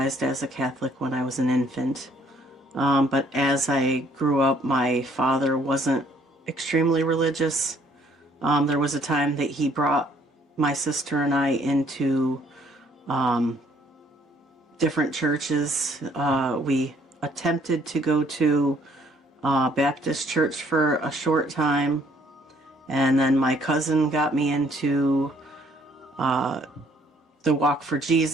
as a Catholic when I was an infant. But as I grew up, my father wasn't extremely religious. There was a time that he brought my sister and I into different churches. We attempted to go to Baptist church for a short time, and then my cousin got me into the Walk for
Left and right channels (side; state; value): both; normal; correlation 0.63